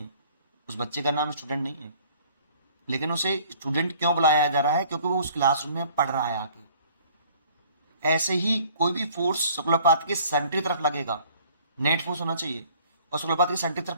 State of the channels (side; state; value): both; inverted; correlation -0.55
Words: उस बच्चे का नाम स्टूडेंट नहीं है, लेकिन उसे स्टूडेंट क्यों बुलाया जा रहा है, क्योंकि वो उस क्लासरूम में पढ़ रहा है आके। ऐसे ही कोई भी फोर्स सर्कुलर पाथ के सेंटर की तरफ लगेगा, नेट फोर्स होना चाहिए, और सर्कुलर पाथ के सेंटर की